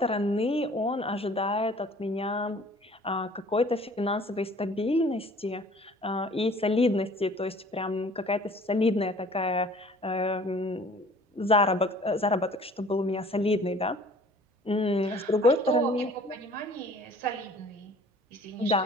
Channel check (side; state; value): both; normal; correlation 0.51